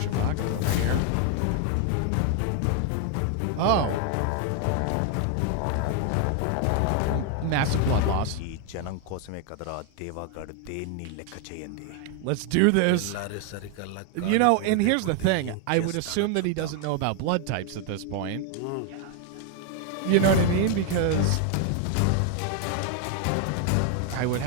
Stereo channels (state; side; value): different; both; correlation 0.00